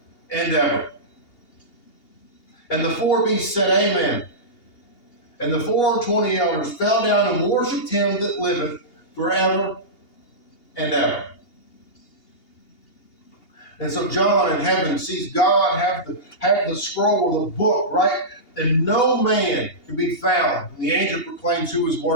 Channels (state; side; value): late; right; 2.8 ms